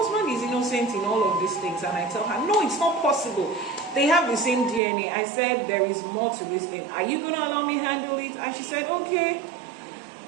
is innocent in all of these things. And I tell her, no, it's not possible. They have the same DNA. I said, there is more to this thing. Are you going to allow me to handle it? And she said, okay,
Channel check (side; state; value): left; drops out; at 4.8 s